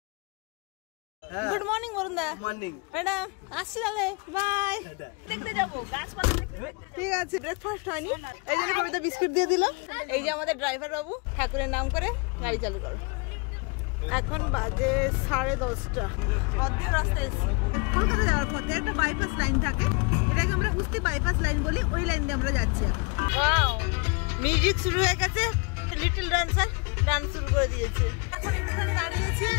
Good morning বরুণদা। ম্যাডাম আসছি তাহলে, বাই। দেখতে যাবো গাছপালা দেখতে। ঠিক আছে, ব্রেকফাস্ট হয়নি এই জন্য কবিতা বিস্কুট দিয়ে দিল। এই যে আমাদের ড্রাইভার বাবু, ঠাকুরের নাম করে গাড়ি চালু করো। এখন বাজে 10:30। অর্ধেক রাস্তায় এসেছি। কলকাতা যাওয়ার পথে একটা বাইপাস লাইন থাকে, এটাকে আমরা উস্তি বাইপাস লাইন বলি। ওই লাইন দিয়ে আমরা যাচ্ছি এখন। ওয়াও, মিউজিক শুরু হয়ে গেছে। লিটল ডান্সার ডান্স শুরু করে দিয়েছে। এখন এখানে দাঁড়িয়েছি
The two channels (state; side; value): quieter; right; 31.3 dB